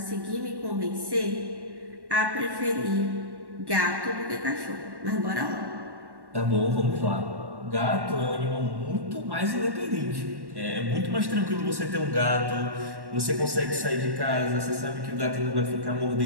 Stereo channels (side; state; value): left; late; 1.1 ms